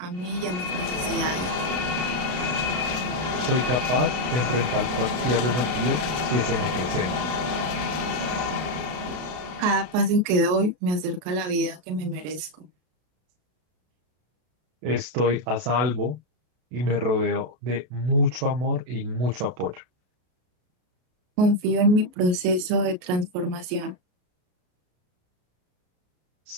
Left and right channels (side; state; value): left; late; 32 ms